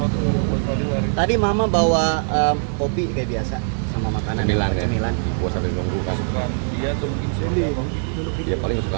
buat Fadel. Tadi mama bawa kopi kayak biasa sama makanan. Cemilan gua sambil nunggu kan. Dia tuh mungkin sendiri. Dia paling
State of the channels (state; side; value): silent; left; digital silence